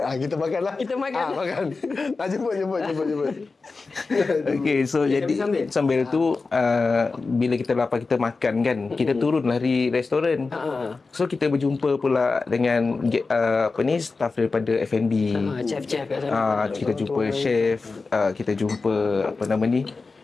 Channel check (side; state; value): right; quieter; 4.1 dB